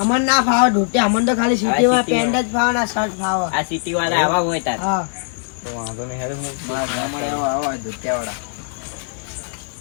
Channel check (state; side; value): silent; right; digital silence